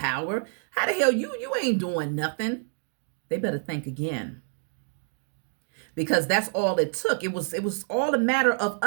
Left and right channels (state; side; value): silent; left; 58 dB below the other